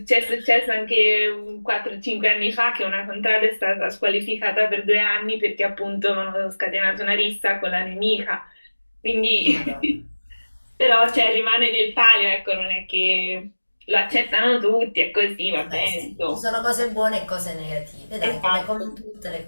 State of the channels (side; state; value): both; inverted; correlation -1.00